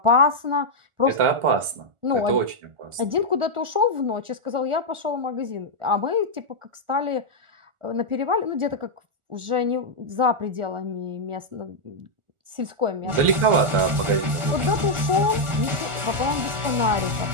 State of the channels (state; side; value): late; left; 1.4 ms